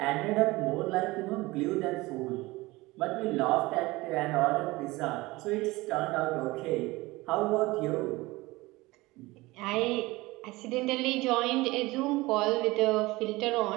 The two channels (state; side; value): quieter; left; 20.9 dB